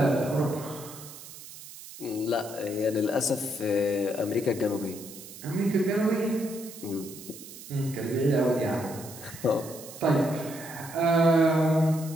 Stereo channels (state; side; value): noise; right; hiss, 15 dB below the sound